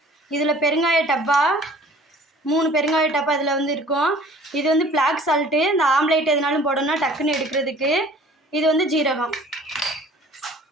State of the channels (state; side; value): normal; both; correlation 0.50